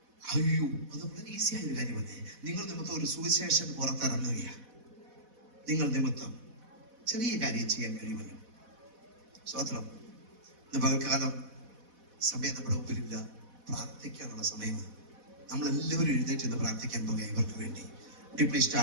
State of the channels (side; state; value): left; late; 4.1 ms